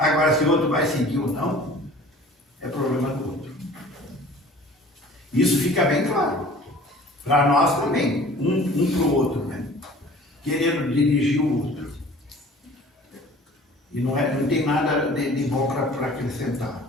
se o outro vai seguir ou não, é problema do outro. Isso fica bem claro. Para nós também, um para o outro, né? Querendo dirigir o outro. E não tem nada de bom para acrescentar.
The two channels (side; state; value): both; normal; correlation 0.47